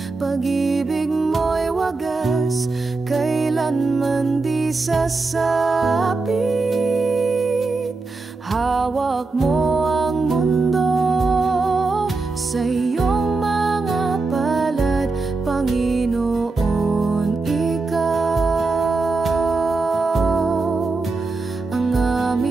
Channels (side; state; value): left; quieter; 3.7 dB